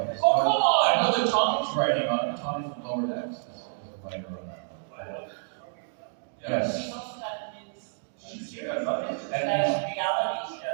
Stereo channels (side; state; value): left; silent; digital silence